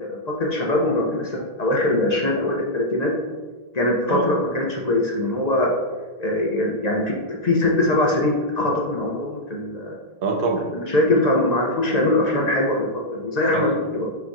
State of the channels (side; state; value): right; late; 1.9 ms